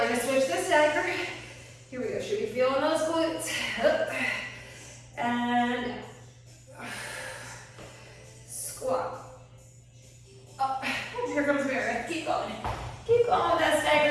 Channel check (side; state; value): both; identical; correlation 1.00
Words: gonna switch the stagger. Here we go, should be feeling those glutes. Up, and squat. Up, here comes Meredith, keep going. Keep going with that